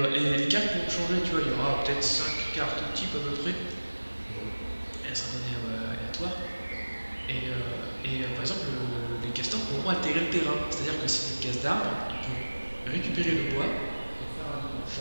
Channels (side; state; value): both; inverted; correlation -1.00